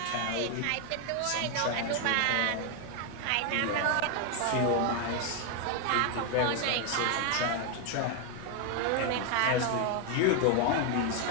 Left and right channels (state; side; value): different; both; correlation 0.01